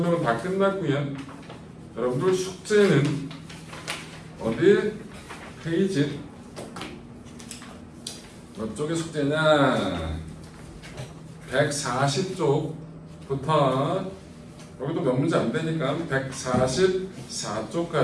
다 끝났고요. 여러분들 숙제는 어디 페이지 몇 쪽의 숙제냐? 140쪽부터 여기도 몇 문제 안 되니까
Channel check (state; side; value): identical; both; correlation 1.00